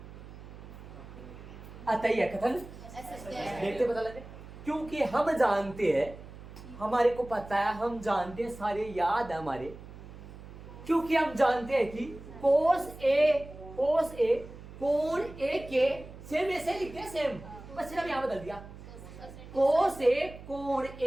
आता ही है कथन, देखते पता लगे। क्योंकि हम जानते हैं, हमारे को पता है, हम जानते हैं, सारे याद है हमारे। क्योंकि हम जानते हैं कि कोस ए कोण ए के सेम ऐसे लिखते हैं, सेम, बस सिर्फ यहां बदल दिया। कोस ए कोण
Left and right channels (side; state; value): right; noise; hum, 15 dB below the sound